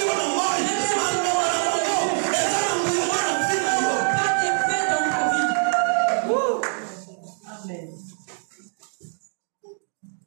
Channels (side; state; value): left; silent; 63 dB below the other